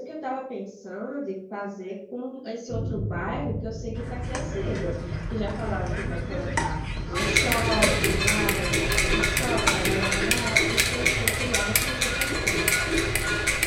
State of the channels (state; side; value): identical; both; correlation 1.00